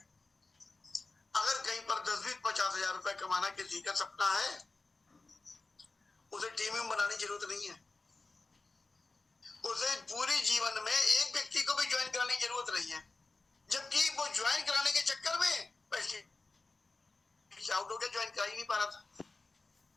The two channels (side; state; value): right; quieter; 3.5 dB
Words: अगर कहीं पर 10-20-50 हजार रुपए कमाना किसी का सपना है, उसे टीम में बनाने की जरूरत नहीं है। उसे पूरे जीवन में एक व्यक्ति को भी ज्वाइन कराने की जरूरत नहीं है, जबकि वो ज्वाइन कराने के चक्कर में आउट हो गया, ज्वाइन करा ही नहीं पा रहा था,